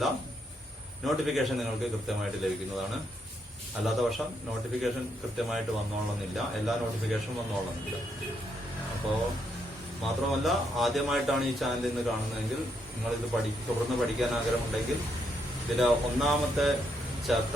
നോട്ടിഫിക്കേഷൻ നിങ്ങൾക്ക് കൃത്യമായിട്ട് ലഭിക്കുന്നതാണ്. അല്ലാത്ത പക്ഷം നോട്ടിഫിക്കേഷൻ കൃത്യമായിട്ട് വന്നോളന്നില്ല, എല്ലാ നോട്ടിഫിക്കേഷനും വന്നോളന്നില്ല. അപ്പോൾ മാത്രമല്ല, ആദ്യമായിട്ടാണ് ഈ ചാനൽ ഇന്ന് കാണുന്നതെങ്കിൽ നിങ്ങളിത് തുടർന്ന് പഠിക്കാൻ ആഗ്രഹമുണ്ടെങ്കിൽ ഇതിലെ 1ാമത്തെ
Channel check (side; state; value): both; normal; correlation 0.77